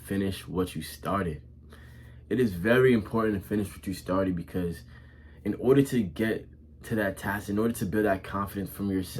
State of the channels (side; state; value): both; identical; correlation 1.00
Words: what you started. It is very important to finish what you started because in order to get to that task, in order to build that confidence from